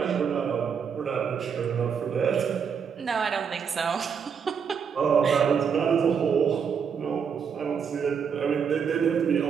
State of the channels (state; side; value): quieter; left; 6.8 dB